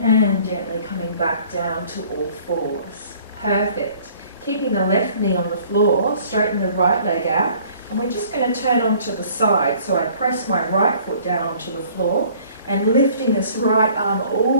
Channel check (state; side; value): inverted; both; correlation -0.54